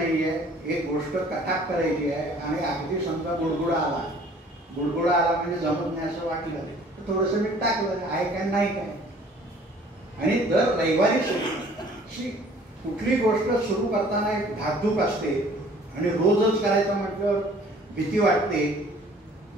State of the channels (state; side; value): normal; both; correlation 0.53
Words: एक गोष्ट कटाप करायची आहे. आणि अगदी समजा गुडगुडा आला म्हणजे जमत नाही असं वाटलं तर थोडंसं मीठ टाकलं, आहे काय नाही काय. आणि दर रविवारी कुठली गोष्ट सुरू करताना एक धाकधूक असते आणि रोजच करायचं म्हटलं भीती वाटते,